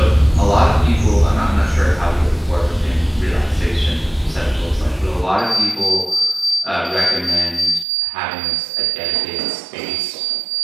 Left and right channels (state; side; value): drops out; left; at 7.9 s